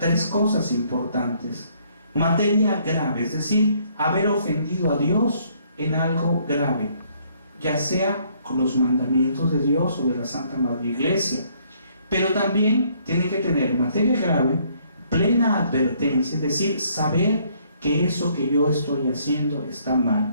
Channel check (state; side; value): inverted; both; correlation -0.66